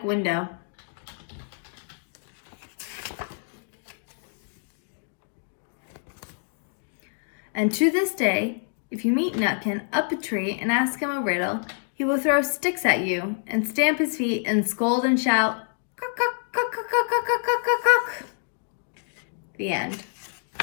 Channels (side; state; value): right; silent; digital silence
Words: window. And to this day, if you meet Nutkin up a tree and ask him a riddle, he will throw sticks at you and stamp his feet and scold and shout, "Cock, cock, cock, cock, cock, cock, cock, cock, cock." The end.